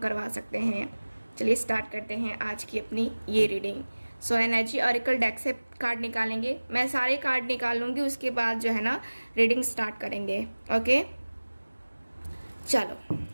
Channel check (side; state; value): both; inverted; correlation -1.00